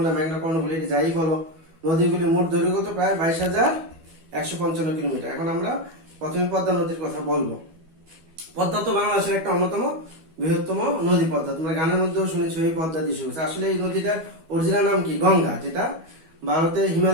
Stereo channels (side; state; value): left; late; 12 ms